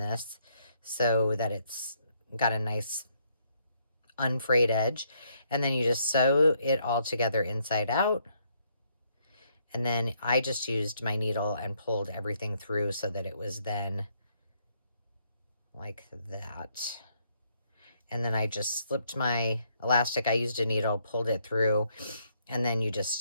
so that it's got a nice unfrayed edge. And then you just sew it all together inside out. And then I just used my needle and pulled everything through so that it was then like that. And then I just slipped my elastic. I used a needle, pulled it through, and then you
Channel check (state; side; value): inverted; both; correlation -0.72